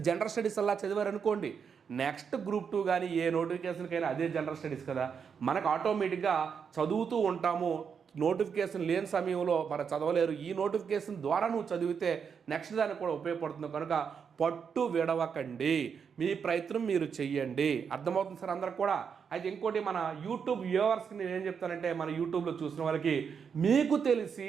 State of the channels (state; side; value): quieter; left; 6.7 dB